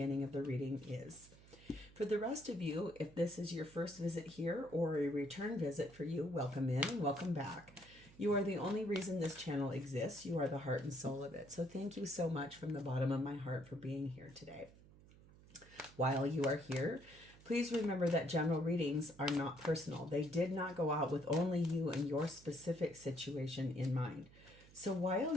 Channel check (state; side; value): noise; right; hum, 22 dB below the sound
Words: of the reading is. For the rest of you, if this is your first visit here or a return visit for you, welcome in and welcome back. You are the only reason this channel exists. You are the heart and soul of it. So thank you so much from the bottom of my heart for being here today. While you are here, please remember that general readings are not personal. They did not go out with only you and your specific situation in mind. So while